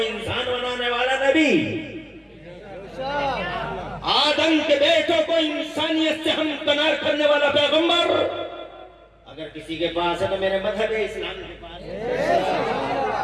انسان بنانے والا نبی، آدم کے بیٹوں کو انسانیت سے ہمکنار کرنے والا پیغمبر اگر کسی کے پاس ہے تو میرے مذہب اسلام کے پاس ہے۔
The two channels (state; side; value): identical; both; correlation 1.00